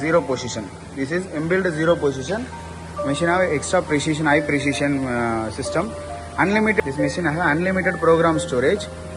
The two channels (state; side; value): identical; both; correlation 1.00